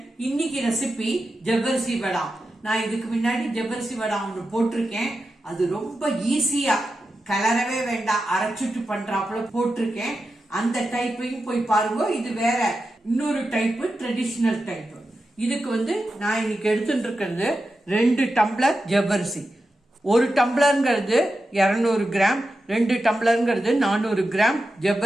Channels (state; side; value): normal; both; correlation 0.90